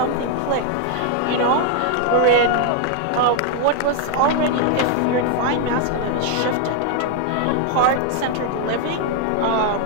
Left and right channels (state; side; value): different; both; correlation 0.00